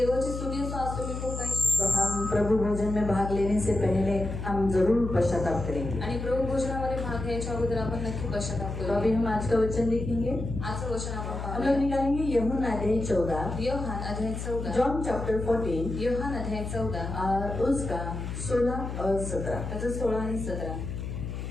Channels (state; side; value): noise; left; hum, 6 dB below the sound